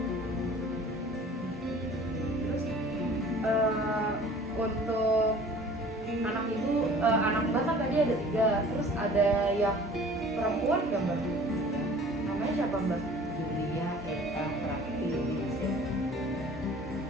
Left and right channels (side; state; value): both; normal; correlation 0.47